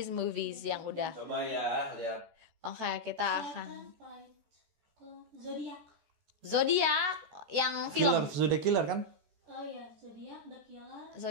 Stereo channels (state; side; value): late; left; 14 ms